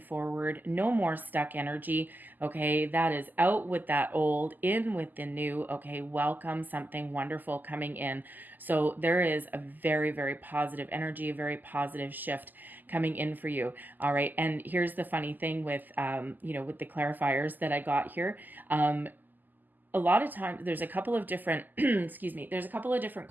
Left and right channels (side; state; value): left; late; 0.086 ms